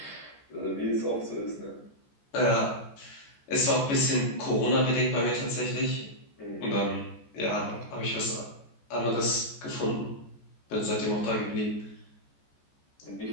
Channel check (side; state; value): right; late; 14 ms